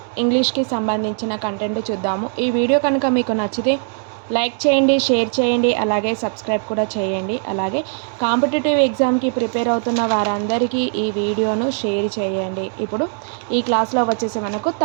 ఇంగ్లీష్కి సంబంధించిన కంటెంట్ చూద్దాము. ఈ వీడియో కనుక మీకు నచ్చితే లైక్ చేయండి, షేర్ చేయండి, అలాగే సబ్స్క్రైబ్ కూడా చేయండి. అలాగే కాంపిటేటివ్ ఎగ్జామ్కి ప్రిపేర్ అవుతున్న వారందరికీ ఈ వీడియోను షేర్ చేయండి. ఇప్పుడు ఈ క్లాస్లో వచ్చేసి మనకు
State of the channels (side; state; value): left; silent; 56 dB below the other